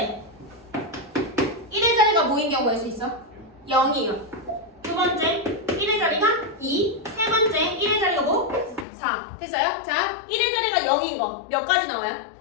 0인 경우 낼 수 있어? 0이요. 두 번째 1의 자리가 2, 세 번째 1의 자리가 뭐? 4. 됐어요? 자, 1의 자리가 0인 거 몇 가지 나와요?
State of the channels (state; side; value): drops out; right; at 8.8 s